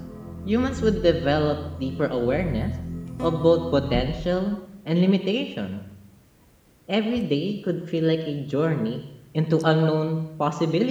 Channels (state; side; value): identical; both; correlation 1.00